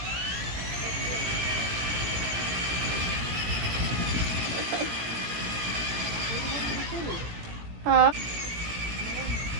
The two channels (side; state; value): left; late; 17 ms